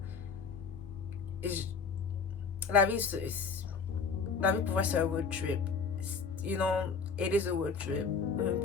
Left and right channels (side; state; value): right; quieter; 5.4 dB